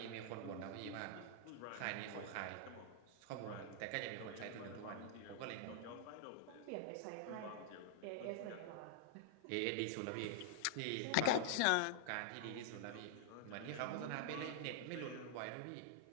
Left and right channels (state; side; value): different; both; correlation -0.01